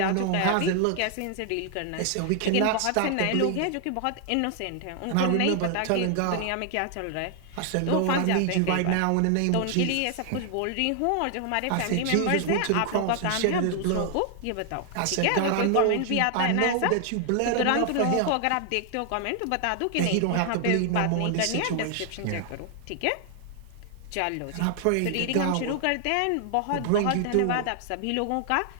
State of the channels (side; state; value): both; different; correlation 0.00